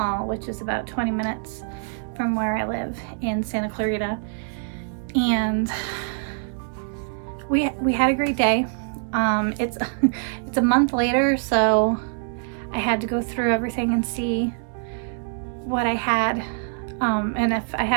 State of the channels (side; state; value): left; silent; digital silence